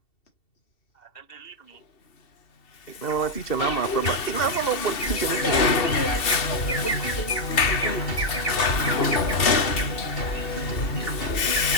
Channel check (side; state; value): right; late; 2.7 ms